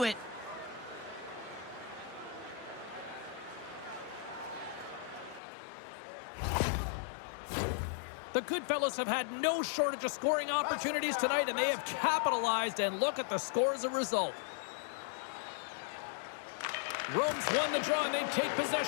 it. The Goodfellas have had no shortage of scoring opportunities tonight, and they have capitalized, and look at the score as a result. Rome's won the draw, and they take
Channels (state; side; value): drops out; right; at 5.4 s